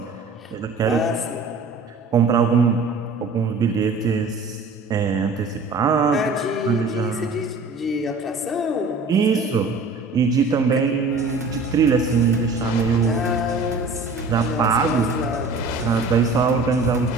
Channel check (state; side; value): quieter; left; 3.5 dB